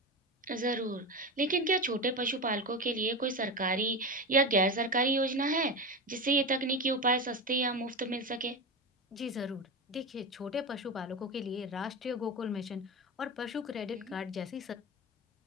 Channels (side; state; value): both; normal; correlation 0.21